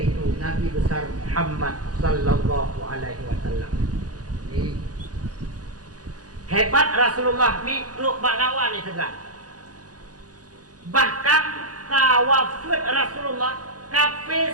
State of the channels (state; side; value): late; left; 0.68 ms